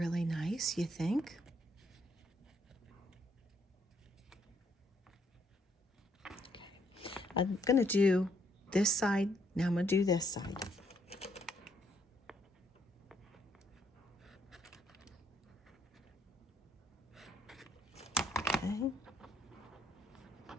nice, you think? Okay. I'm gonna do this side. Now I'm gonna do this side. Okay.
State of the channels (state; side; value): normal; both; correlation 0.71